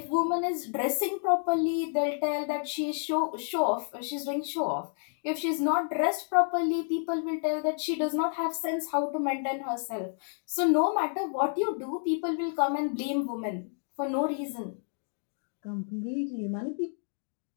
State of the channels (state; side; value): silent; right; 58 dB below the other